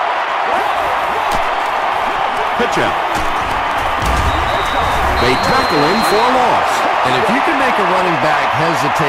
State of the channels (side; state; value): both; identical; correlation 1.00